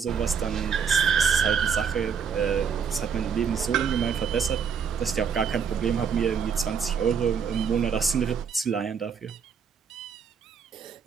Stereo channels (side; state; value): left; quieter; 6.6 dB